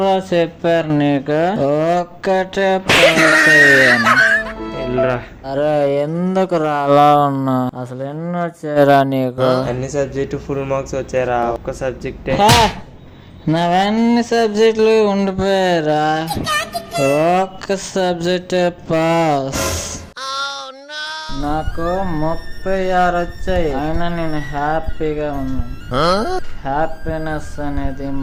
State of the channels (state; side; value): identical; both; correlation 1.00